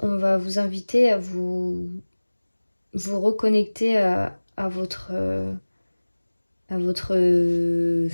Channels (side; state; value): both; inverted; correlation -1.00